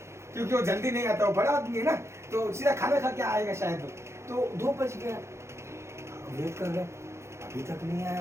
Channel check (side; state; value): left; late; 0.13 ms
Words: क्योंकि वो जल्दी नहीं आता, वो बड़ा आदमी है ना, तो सीधा खाना खा के आएगा शायद। तो 2 बज गया, वेट कर रहे, अभी तक नहीं आया